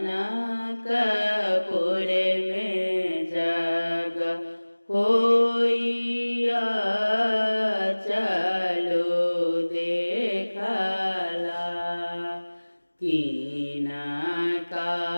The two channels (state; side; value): inverted; both; correlation -1.00